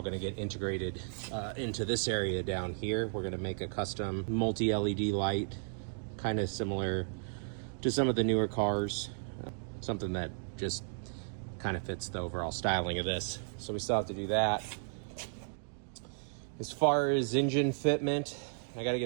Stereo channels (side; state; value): left; silent; digital silence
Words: going to get integrated into this area down here. We're going to make a custom multi-LED light, kind of similar to some of the newer cars, something that just kind of fits the overall styling of this. So we still have to do that. As far as engine fitment, I got to